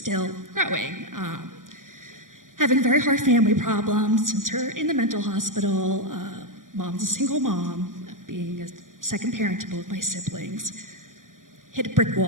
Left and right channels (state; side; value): late; left; 0.89 ms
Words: growing. Having very hard family problems since her in the mental hospital. Mom's a single mom, being a second parent to both my siblings. Hit a brick